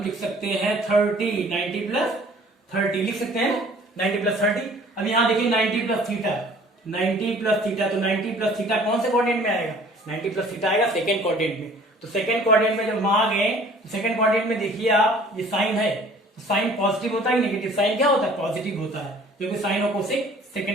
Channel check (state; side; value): normal; both; correlation 0.52